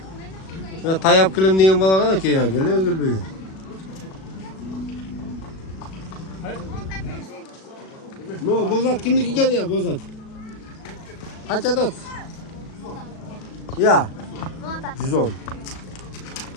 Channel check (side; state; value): right; late; 37 ms